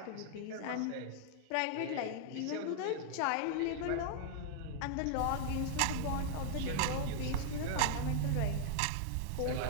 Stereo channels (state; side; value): different; both; correlation -0.01